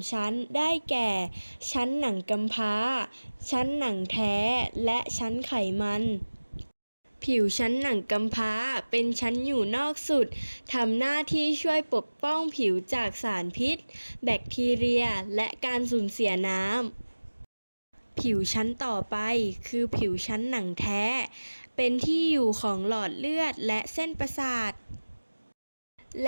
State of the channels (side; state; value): both; inverted; correlation -1.00